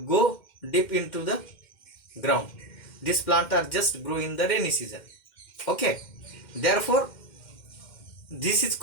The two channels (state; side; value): late; right; 2.1 ms